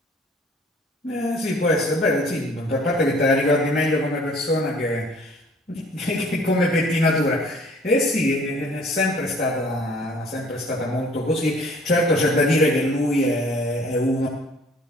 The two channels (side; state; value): both; normal; correlation 0.54